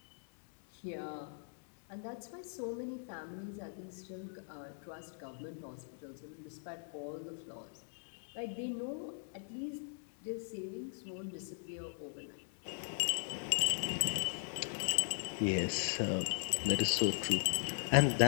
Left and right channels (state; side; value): silent; right; digital silence